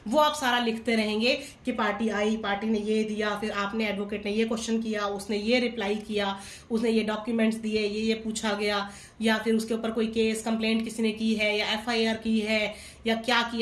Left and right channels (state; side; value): identical; both; correlation 1.00